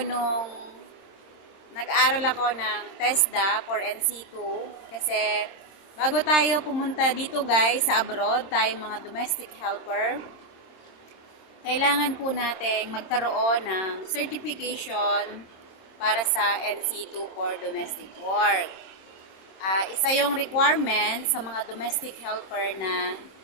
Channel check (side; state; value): right; late; 26 ms